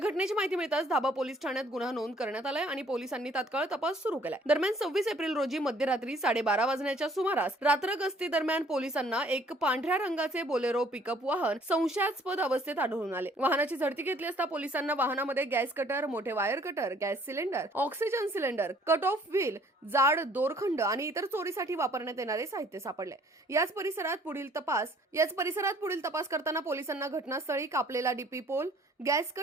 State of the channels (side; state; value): both; normal; correlation 0.58